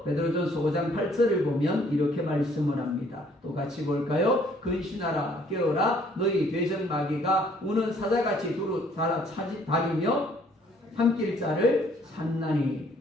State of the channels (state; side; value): normal; both; correlation 0.61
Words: 베드로전서 5장 8절을 보면 이렇게 말씀을 합니다. 또 같이 볼까요? 근신하라 깨어라 너희 대적마귀가 우는 사자같이 두루 다니며 삼킬 자를 산나니.